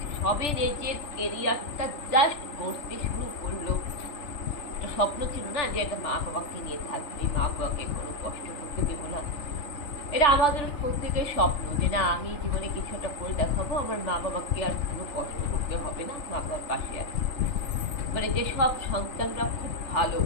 সবে নিজের কেরিয়ারটা জাস্ট করতে শুরু করলো। একটা স্বপ্ন ছিল না যে একটা মা বাবাকে নিয়ে থাকবে, মা বাবাকে কোনো কষ্ট করতে দেবো না। এটা আমাদের প্রত্যেকের স্বপ্ন যে না, আমি জীবনে কিছু একটা করে দেখাবো, আমার মা বাবাকে আর কোনো কষ্ট করতে হবে না, মা বাবার পাশে আছে। যেসব সন্তানরা খুব ভালো,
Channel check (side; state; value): right; late; 3.4 ms